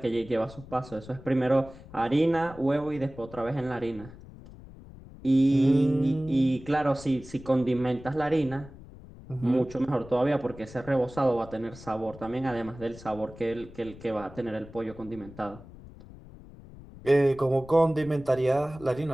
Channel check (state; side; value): noise; left; rumble, 18 dB below the sound